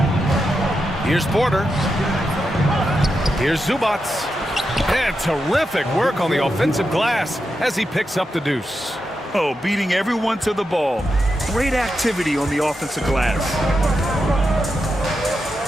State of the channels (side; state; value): both; normal; correlation 0.87